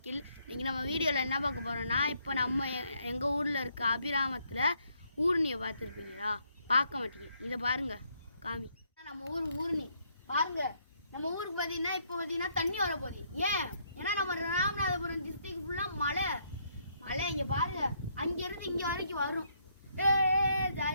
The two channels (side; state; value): both; inverted; correlation -0.72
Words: இன்றைக்கி நம்ம வீடியோவில் என்ன பார்க்க போகிறோன்னா, இப்போ நம்ம எங்கள் ஊரில் இருக்க அபிராமத்தில் ஊர்னியை பார்த்துருக்கீங்களா? பார்க்க மாட்டீங்க. இதை பாருங்கள், காமி. நம்ம ஊர்னி பாருங்கள். நம்ம ஊருக்கு பார்த்தீங்கன்னா இப்போ பார்த்தீங்கன்னா தண்ணி வரப்போகுது. ஏன்னா நம்ம ராமநாதபுரம் டிஸ்ட்ரிக்ட் ஃபுல்லாக மழை. இங்கே பாருங்கள், அங்கேருந்து இங்கே வரைக்கும் வரும்.